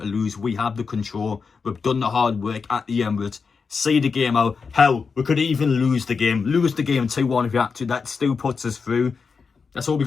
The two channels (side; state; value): right; quieter; 5.2 dB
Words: lose. We have the control. We've done the hard work at the Emirates. See the game out. Hell, we could even lose the game. Lose the game 2-1 if you have to. That still puts us through. That's all we